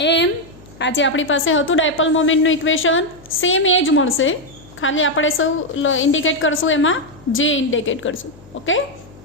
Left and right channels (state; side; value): noise; left; hum, 23 dB below the sound